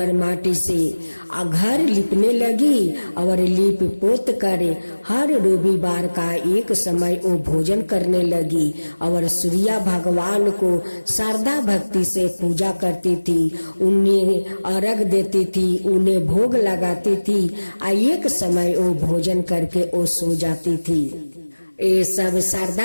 माटी से घर लिपने लगी और लिप पोत कर हर रविवार का एक समय वो भोजन करने लगी और सूर्या भगवान को श्रद्धा भक्ति से पूजा करती थी, उन्हें अर्घ देती थी, उन्हें भोग लगाती थी और एक समय वो भोजन करके वो सो जाती थी। ये सब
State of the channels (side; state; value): both; inverted; correlation -1.00